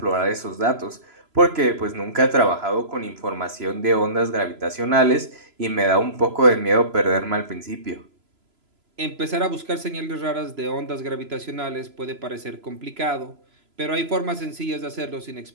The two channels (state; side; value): late; left; 3.0 ms